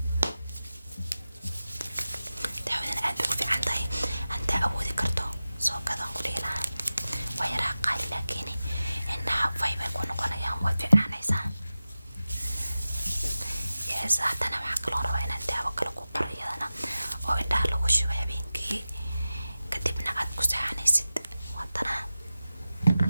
daawadan aad bay ku fiican tahay. hantaa awoodi karto soo gadaan ku dhihi lahaa. waa yaraa qaali laakiin indhaha fay bay ku noqonayaan, waad fiicnaanaysaa. yes haddana waxaa kaloo rabaa inaan daawo kale ku qoro iyadana oo indhaha lagu shubo habeenkii kadibna aad ku seexanaysid. haddana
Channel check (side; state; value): both; inverted; correlation -0.95